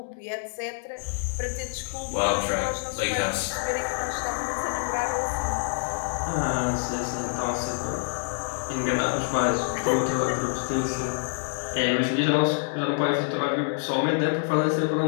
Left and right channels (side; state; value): right; silent; digital silence